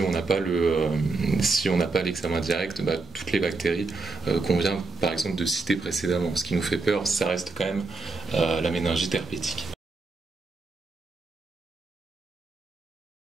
on n'a pas l'examen direct, toutes les bactéries qu'on vient par exemple de citer précédemment. Ce qui nous fait peur, ça reste quand même la méningite herpétique.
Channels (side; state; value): left; quieter; 3.9 dB